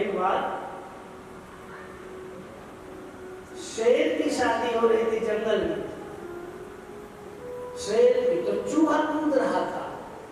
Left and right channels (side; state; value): both; identical; correlation 1.00